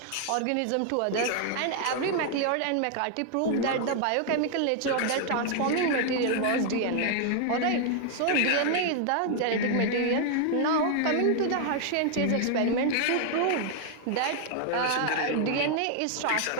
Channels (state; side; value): different; both; correlation 0.00